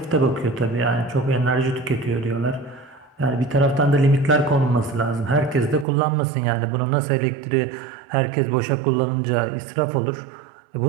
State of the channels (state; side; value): drops out; left; at 5.9 s